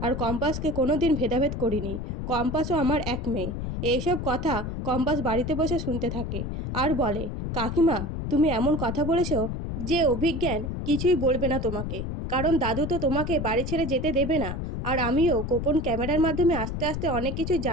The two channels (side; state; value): left; noise; rumble, 4 dB below the sound